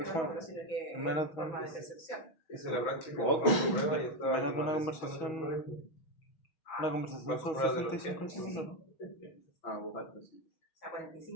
pero sino que es forma de percepción. Esa es la práctica. Menos de una conversación son 65 decibeles, ¿no? Ah, pues alto, sí. O sea,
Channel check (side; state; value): right; late; 6.2 ms